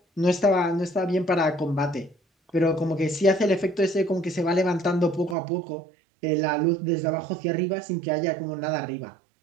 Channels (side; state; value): left; drops out; at 5.4 s